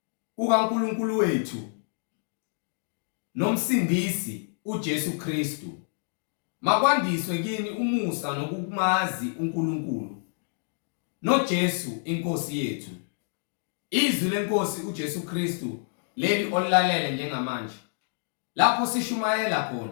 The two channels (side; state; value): right; silent; digital silence